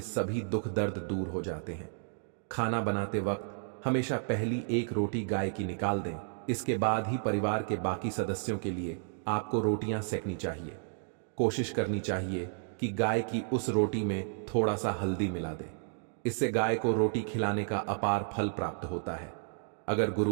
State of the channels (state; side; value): silent; left; digital silence